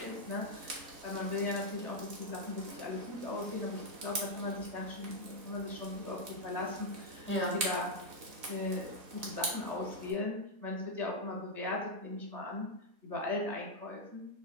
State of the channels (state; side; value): late; left; 4.0 ms